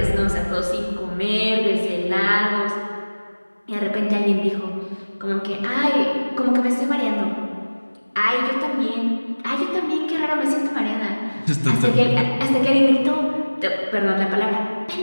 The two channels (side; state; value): both; inverted; correlation -1.00